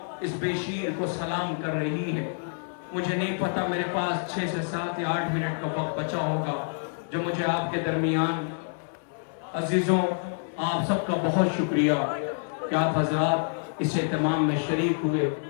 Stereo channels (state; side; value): silent; right; 60 dB below the other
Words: اس بیشیر کو سلام کر رہی ہے۔ مجھے نہیں پتا، میرے پاس 6 سے 7 یا 8 منٹ کا وقت بچا ہوگا جو مجھے آپ کے درمیان، عزیزوں آپ سب کا بہت شکریہ کہ آپ حضرات اس اہتمام میں شریک ہوئے،